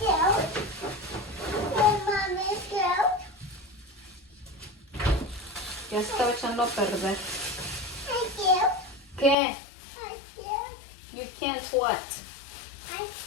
Ya se estaba echando a perder. ¿Qué? You can't what? I'm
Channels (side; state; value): right; drops out; at 9.3 s